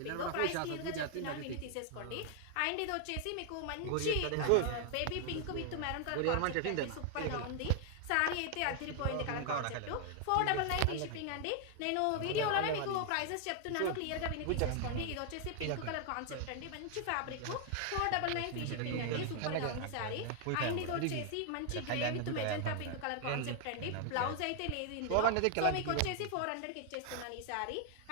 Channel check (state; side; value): different; both; correlation 0.00